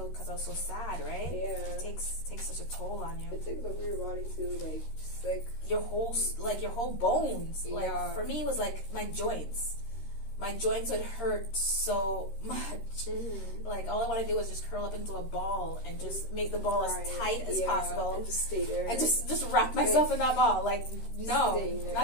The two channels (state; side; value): late; right; 13 ms